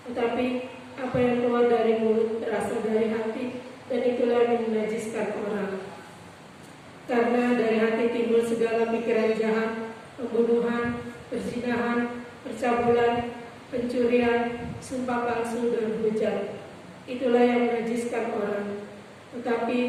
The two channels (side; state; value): both; identical; correlation 1.00